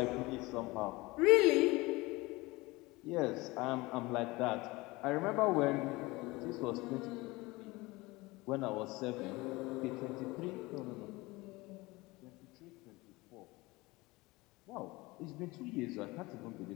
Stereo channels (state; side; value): quieter; right; 22.0 dB